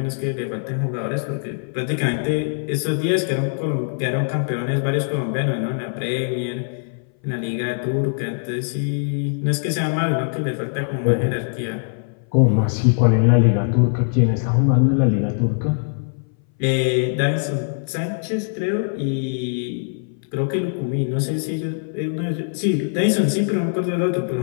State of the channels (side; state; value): right; silent; 60 dB below the other